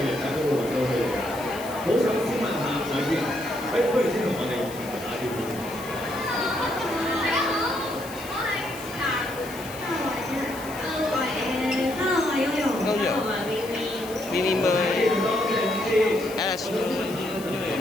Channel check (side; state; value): left; noise; hiss, 15 dB below the sound